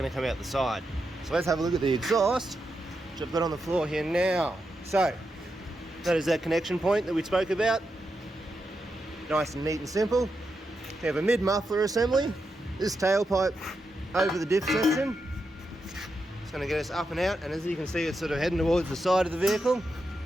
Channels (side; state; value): both; normal; correlation 0.86